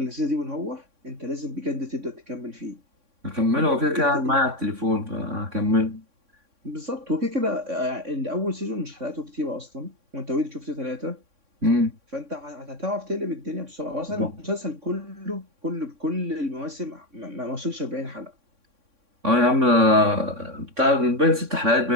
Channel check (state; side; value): late; left; 3.6 ms